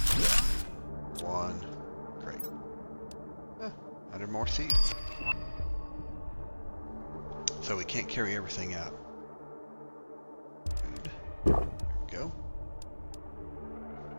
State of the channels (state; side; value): inverted; both; correlation -1.00